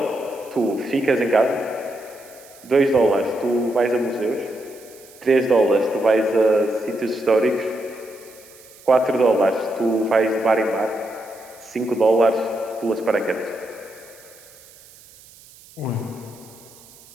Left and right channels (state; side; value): noise; right; hiss, 23 dB below the sound